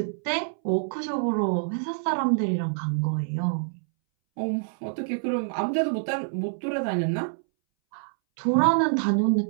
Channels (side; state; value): left; silent; 61 dB below the other